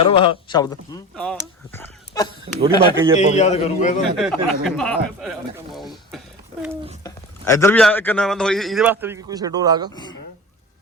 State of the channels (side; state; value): both; normal; correlation 0.34